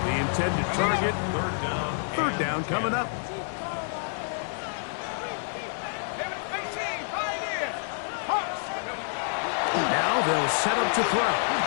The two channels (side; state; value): right; silent; 59 dB below the other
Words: intended target. Third down coming up. Now they'll set up to throw.